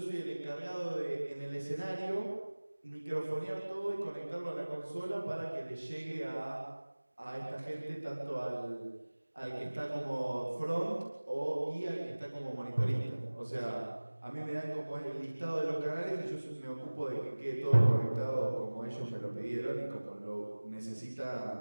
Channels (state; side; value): inverted; both; correlation -1.00